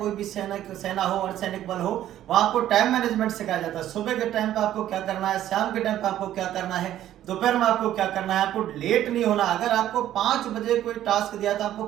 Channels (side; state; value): left; quieter; 12.3 dB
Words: भी सेना हो, अर्धसैनिक बल हो, वहां आपको टाइम मैनेजमेंट सिखाया जाता है। सुबह के टाइम पे आपको क्या करना है, शाम के टाइम पे आपको क्या करना है, दोपहर में आपको क्या करना है। आपको लेट नहीं होना। अगर आपको 5 बजे कोई टास्क दिया था, आपको